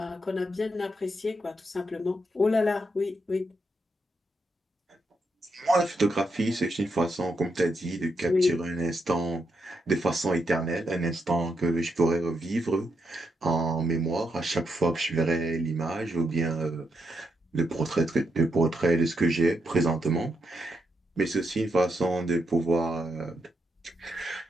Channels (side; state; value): both; normal; correlation 0.82